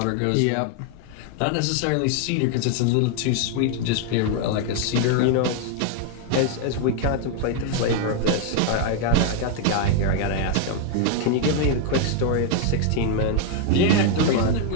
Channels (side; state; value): both; different; correlation 0.00